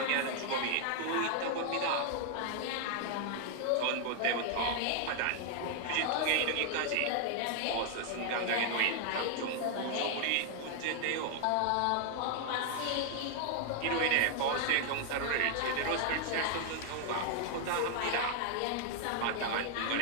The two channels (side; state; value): both; different; correlation 0.00